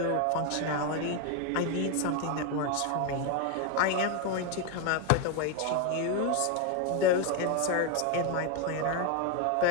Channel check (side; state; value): both; different; correlation 0.01